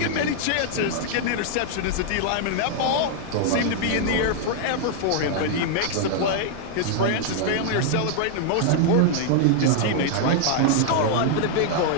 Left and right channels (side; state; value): both; different; correlation 0.00